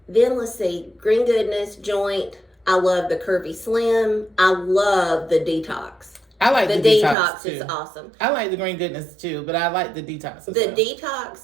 Then let's see, Green Goodness, Joint. I love the Curvy Slim. I love the Detox. I like the detox too. Is awesome. I like the Green Goodness too, but I like the detox as well.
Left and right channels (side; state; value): left; drops out; at 7.2 s